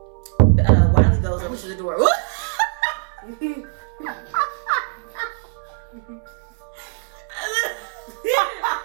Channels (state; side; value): silent; left; 61 dB below the other